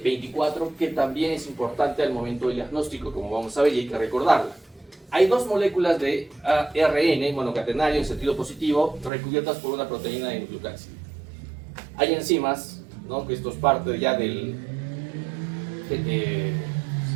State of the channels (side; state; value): left; drops out; at 9.1 s